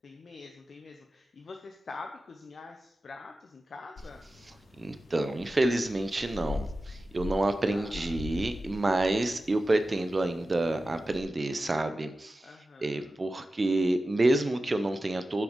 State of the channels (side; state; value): both; normal; correlation 0.94